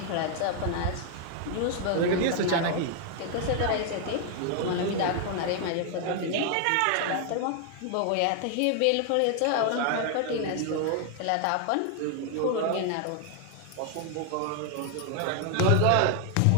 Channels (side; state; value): both; different; correlation 0.00